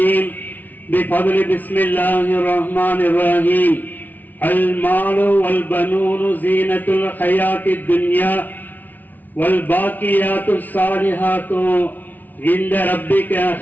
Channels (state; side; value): late; right; 0.082 ms